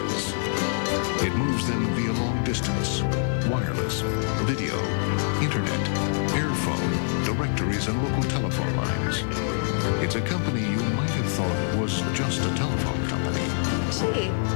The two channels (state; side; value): silent; right; digital silence